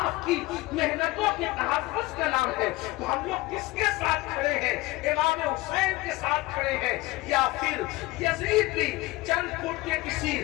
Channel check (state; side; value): quieter; right; 20.1 dB